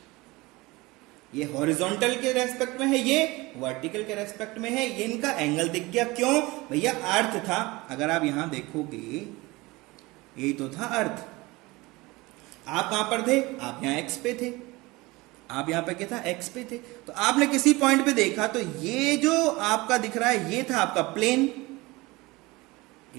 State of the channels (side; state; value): left; quieter; 22.2 dB